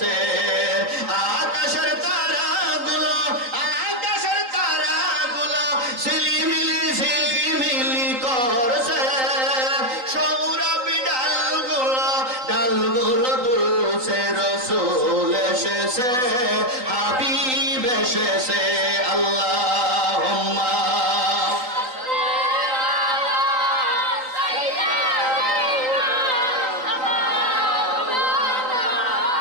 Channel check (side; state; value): left; late; 3.9 ms